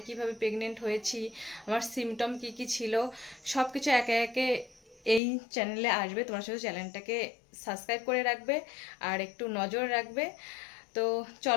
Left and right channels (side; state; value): right; drops out; at 5.2 s